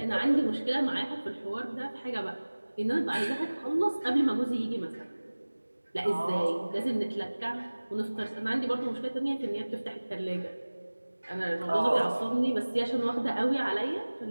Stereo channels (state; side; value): inverted; both; correlation -1.00